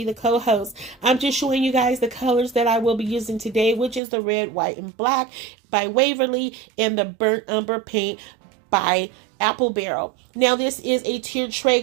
the co-host. I'm just showing you guys the colors that I will be using today, which is the red, white, and black by Waverly and the burnt umber paint by Apple Barrel. Now this is a tiered tray,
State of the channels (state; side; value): drops out; left; at 4.0 s